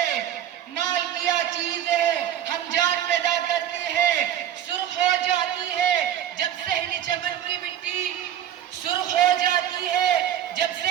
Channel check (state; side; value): quieter; left; 10.7 dB